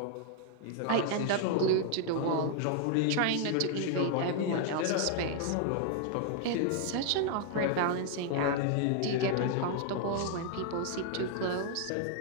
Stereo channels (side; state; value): both; different; correlation 0.00